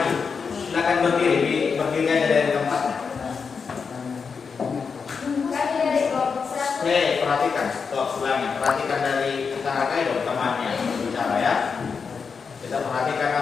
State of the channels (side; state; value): right; quieter; 5.6 dB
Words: Silakan berdiri aja dari tempatnya. perhatikan dari kakak dong temannya bicara ya. Kita perhatikan